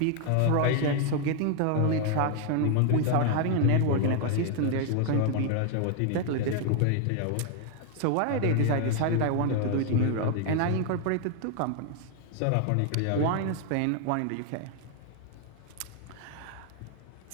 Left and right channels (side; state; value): both; different; correlation 0.00